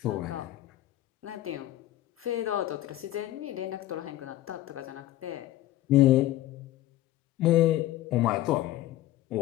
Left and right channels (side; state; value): right; quieter; 15.1 dB